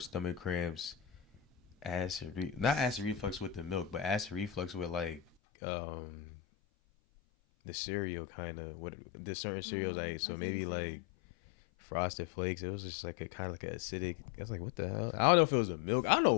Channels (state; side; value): drops out; right; at 5.2 s